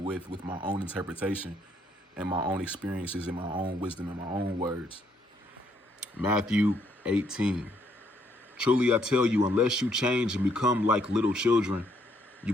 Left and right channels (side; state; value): both; normal; correlation 0.70